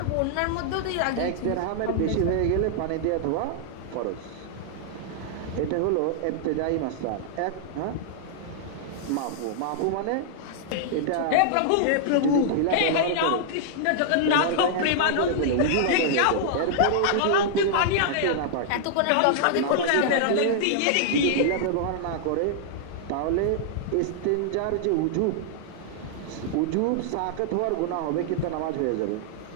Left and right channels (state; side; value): different; both; correlation -0.01